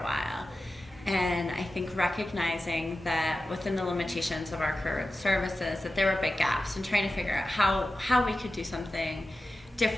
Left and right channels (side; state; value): both; normal; correlation 0.93